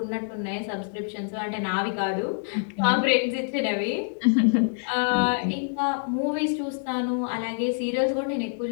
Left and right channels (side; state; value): right; silent; 61 dB below the other